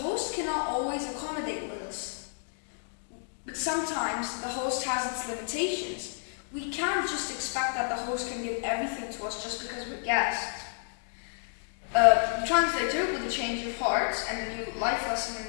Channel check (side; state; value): right; silent; digital silence